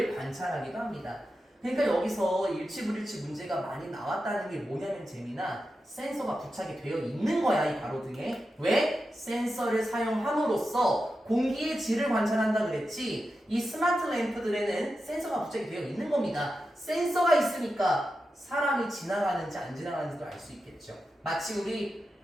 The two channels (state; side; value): normal; both; correlation 0.90